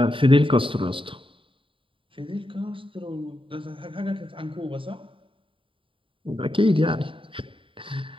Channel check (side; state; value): left; late; 0.25 ms